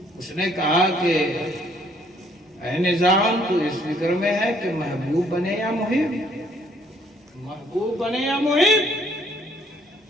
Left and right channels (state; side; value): normal; both; correlation 0.64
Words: اس نے کہا کہ اے نظام تو اس فکر میں ہے کہ محبوب بنے یا محب؟ محبوب بنے یا محب؟